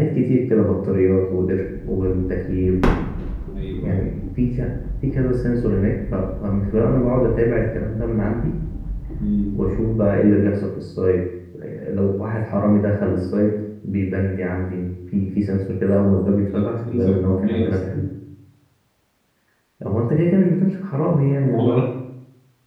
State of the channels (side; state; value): both; identical; correlation 1.00